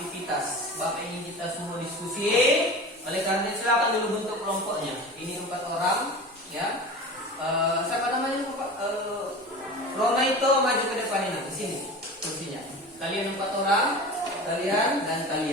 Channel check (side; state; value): both; normal; correlation 0.33